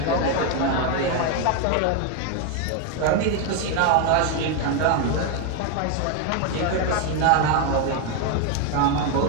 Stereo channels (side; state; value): both; different; correlation 0.01